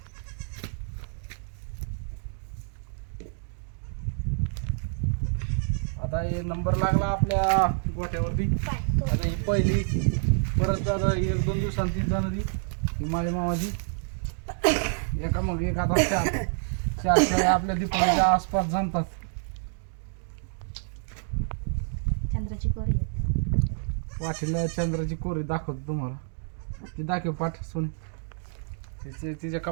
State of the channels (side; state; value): left; silent; 59 dB below the other